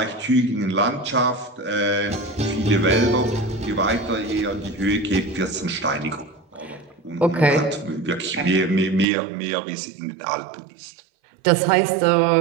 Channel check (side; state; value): left; drops out; at 9.1 s